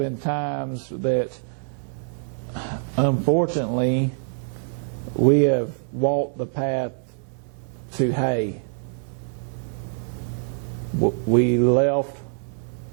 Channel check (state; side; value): silent; left; digital silence